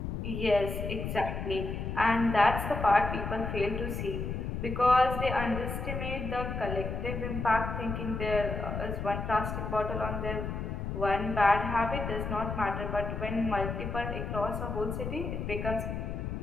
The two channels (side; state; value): left; noise; rumble, 4 dB below the sound